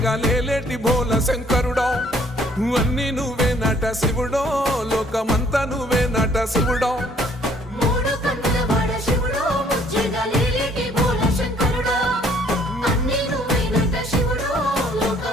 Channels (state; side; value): normal; both; correlation 0.61